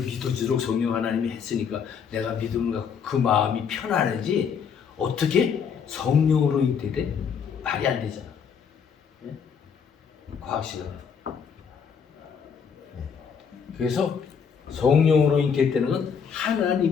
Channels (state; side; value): quieter; right; 6.8 dB